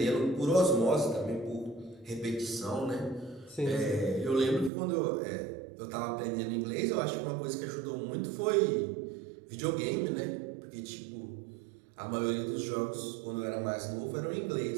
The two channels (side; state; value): left; drops out; at 4.7 s